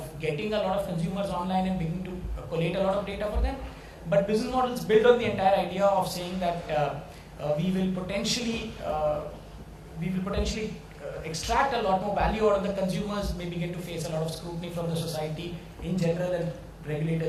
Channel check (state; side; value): identical; both; correlation 1.00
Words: getting a lot of consumers online and beginning to collate a lot of data for them. But business models build on the entire idea of saying that we will potentially extract a lot more value out of the consumers, may begin to face a lot of scrutiny from the society in general and